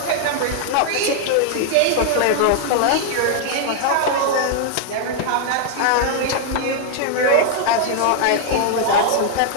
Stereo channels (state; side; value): different; both; correlation 0.00